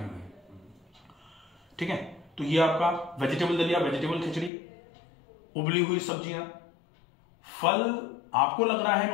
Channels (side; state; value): right; drops out; at 4.5 s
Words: ठीक है, तो ये आपका वेजिटेबल दलिया, वेजिटेबल खिचड़ी, उबली हुई सब्जियां। फल आपको लग रहा है